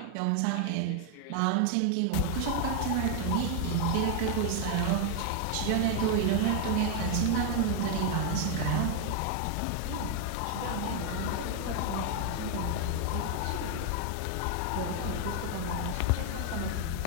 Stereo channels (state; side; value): different; both; correlation 0.00